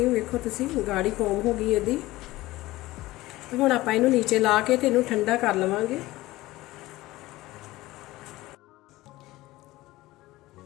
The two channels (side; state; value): right; quieter; 18.2 dB